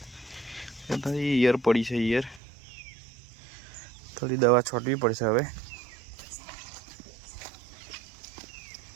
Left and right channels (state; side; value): drops out; left; at 2.4 s